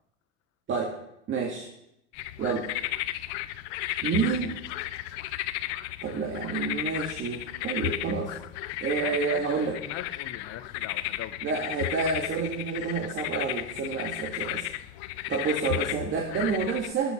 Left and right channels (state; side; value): normal; both; correlation 0.07